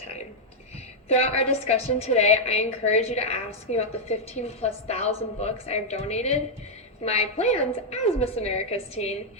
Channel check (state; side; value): normal; both; correlation -0.02